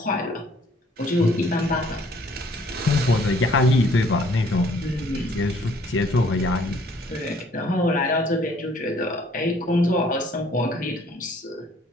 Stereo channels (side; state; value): both; normal; correlation 0.60